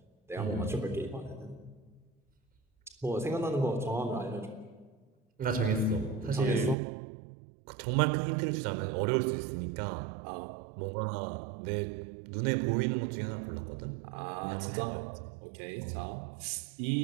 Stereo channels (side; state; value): left; drops out; at 6.8 s